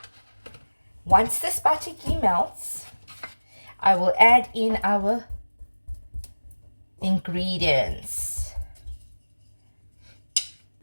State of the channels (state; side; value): inverted; both; correlation -1.00